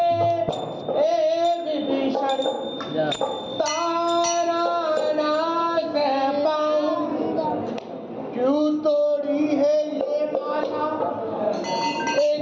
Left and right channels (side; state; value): both; identical; correlation 1.00